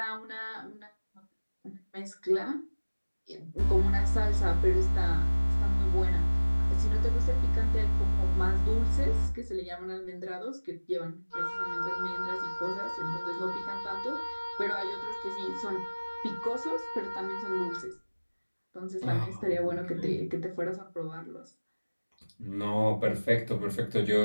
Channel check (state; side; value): inverted; both; correlation -1.00